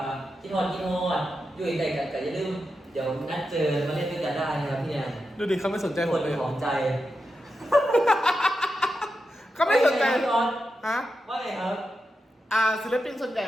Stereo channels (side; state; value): both; normal; correlation 0.88